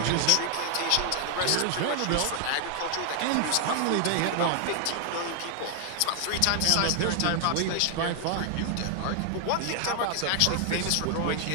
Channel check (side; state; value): both; different; correlation 0.00